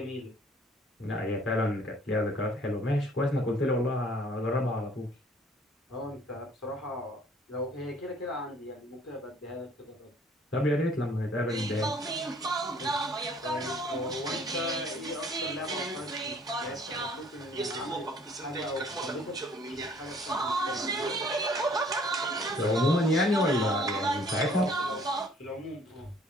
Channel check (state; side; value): normal; both; correlation 0.57